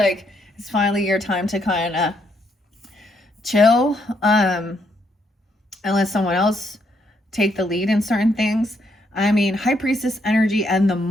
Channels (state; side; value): normal; both; correlation 0.74